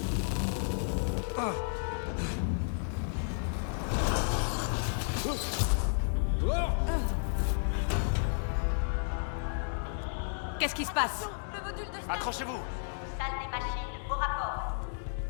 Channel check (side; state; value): right; silent; digital silence